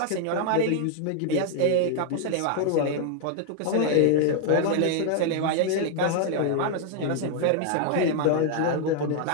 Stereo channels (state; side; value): different; both; correlation 0.00